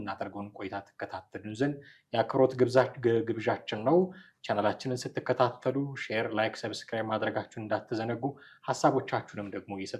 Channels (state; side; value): identical; both; correlation 1.00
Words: ቆይታ ተከታተሉን ዘንድ የአክብሮት ግብዣችን ነው። ቻናላችንን ስትከታተሉ ሼር፣ ላይክ፣ ሰብስክራይብ ማድረጋችሁን እንዳትዘነጉ፣ ሀሳቦቻችሁንም ደግሞ